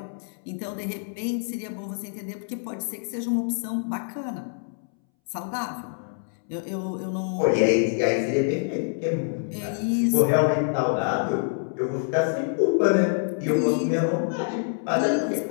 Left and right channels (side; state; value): right; silent; 61 dB below the other